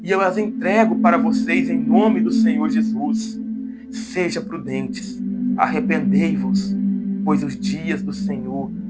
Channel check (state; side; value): identical; both; correlation 1.00